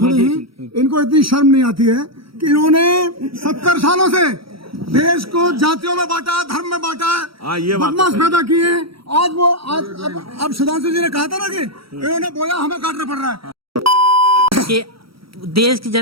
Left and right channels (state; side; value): late; left; 0.75 ms